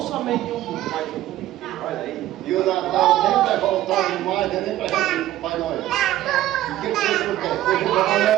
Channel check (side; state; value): left; quieter; 14.2 dB